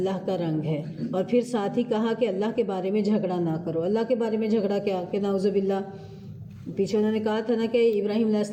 کا رنگ ہے، اور پھر ساتھ ہی کہا کہ اللہ کے بارے میں جھگڑا نہ کرو۔ اللہ کے بارے میں جھگڑا کیا کہ نعوذ باللہ، پیچھے انہوں نے کہا تھا نا کہ ابراہیم علیہ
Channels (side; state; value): both; identical; correlation 1.00